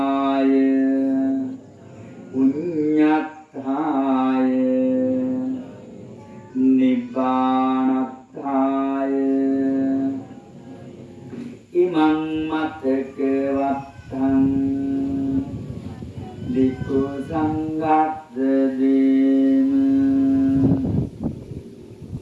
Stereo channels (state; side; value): identical; both; correlation 1.00